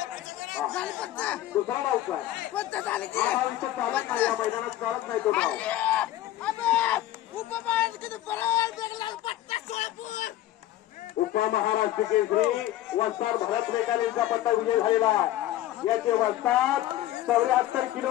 दुसरा डाव काय हा विषय चालत नाही, या मैदानात चालत नाही तो डाव. उपमहाराष्ट्र केसरी वस्ताद भरत मेकाल यांचा पत्ता विजय झालेला. याचे वस्ताद 74 किलो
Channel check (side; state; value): right; quieter; 14.1 dB